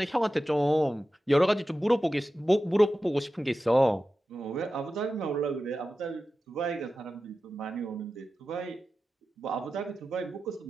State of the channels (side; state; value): both; normal; correlation 0.93